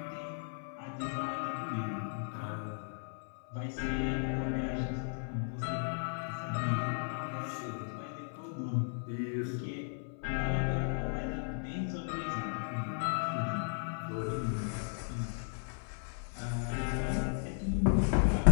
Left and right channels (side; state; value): right; silent; 54 dB below the other